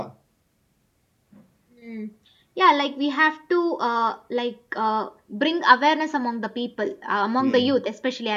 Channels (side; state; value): both; identical; correlation 1.00